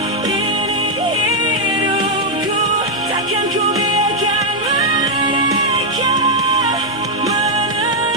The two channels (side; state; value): both; normal; correlation -0.02